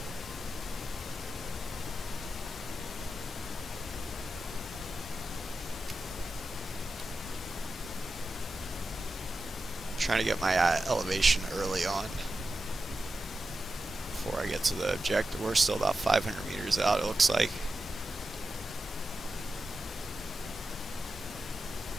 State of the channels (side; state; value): both; normal; correlation 0.91